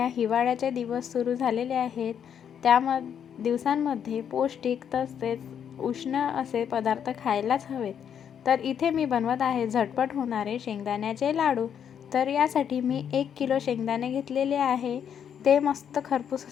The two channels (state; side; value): quieter; right; 8.4 dB